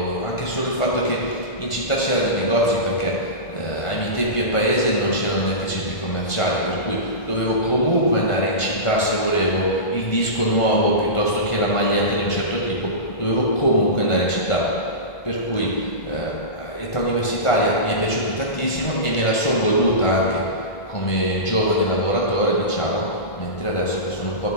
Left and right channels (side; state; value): right; late; 1.5 ms